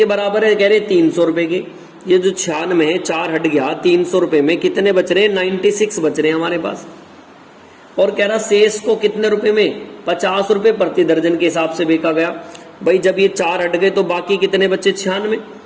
बराबर है, कह रहे 300 रुपए के। ये जो 96 है, 4 हट गया, 300 रुपए में कितने बच रहे, 96 बच रहे हैं हमारे पास। और कह रहा शेष को कितने रुपए में, 50 रुपए प्रति दर्जन के हिसाब से बेचा गया। भाई जब ये 4 हट गए तो बाकी कितने बचे, 96।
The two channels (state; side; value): identical; both; correlation 1.00